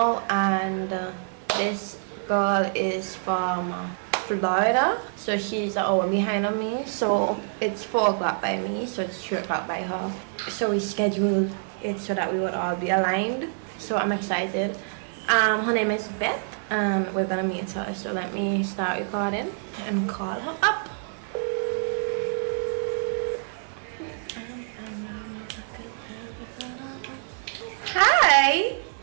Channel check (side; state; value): left; silent; digital silence